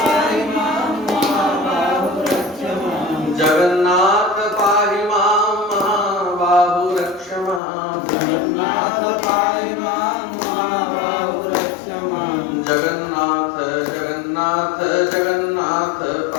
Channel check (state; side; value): drops out; right; at 7.6 s